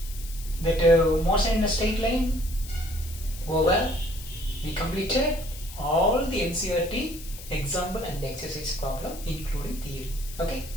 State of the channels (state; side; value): noise; left; hiss, 15 dB below the sound